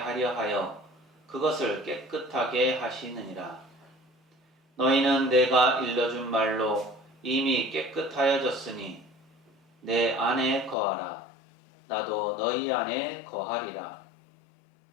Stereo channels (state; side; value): drops out; right; at 10.8 s